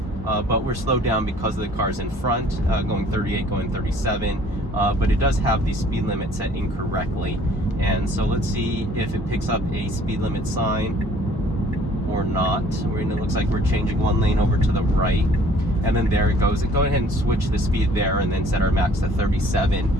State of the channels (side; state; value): both; normal; correlation 0.55